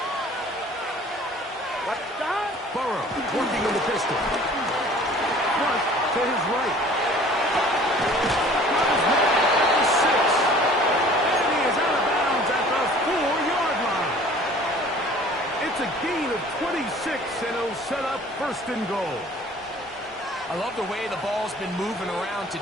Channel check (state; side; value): normal; both; correlation 0.49